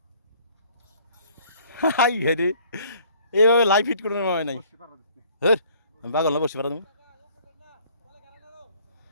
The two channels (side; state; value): both; inverted; correlation -0.57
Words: হাই হেরে এইভাবে লাইভ হিট করে নেওয়া হয় নাই হ্যাঁ আমি পাগল না বসে পারা তুমি